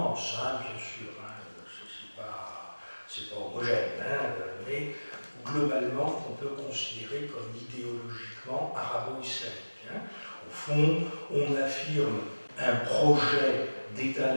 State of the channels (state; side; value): inverted; both; correlation -1.00